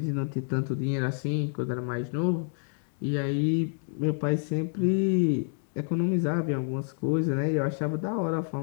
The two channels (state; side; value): silent; right; 59 dB below the other